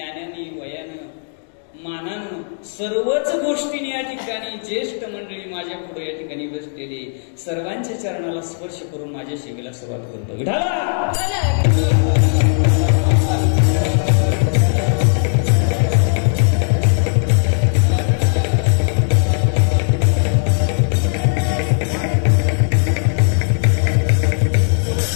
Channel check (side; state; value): right; silent; digital silence